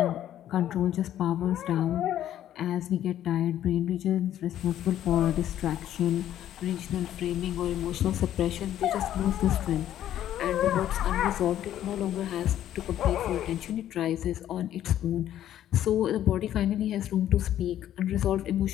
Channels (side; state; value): right; quieter; 11.7 dB